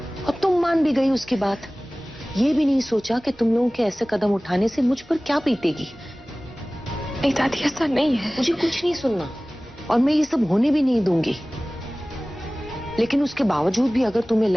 तुम मान भी गई उसकी बात। ये भी नहीं सोचा कि तुम लोगों के ऐसे कदम उठाने से मुझ पर क्या बीतेगी। नहीं दादी, ऐसा नहीं है। मुझे कुछ नहीं सुनना, और मैं ये सब होने भी नहीं दूंगी। लेकिन उसके बावजूद भी अगर तुम्हें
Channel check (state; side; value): normal; both; correlation 0.98